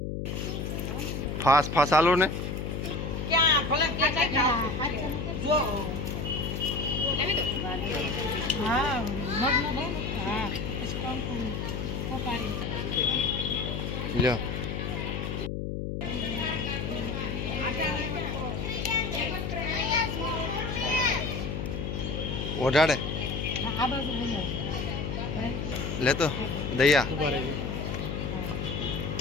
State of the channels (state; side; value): noise; left; hum, 3 dB below the sound